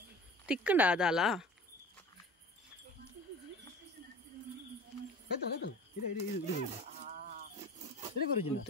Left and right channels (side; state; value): both; normal; correlation 0.40